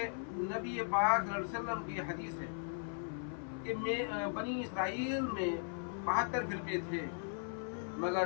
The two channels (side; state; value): right; silent; 52 dB below the other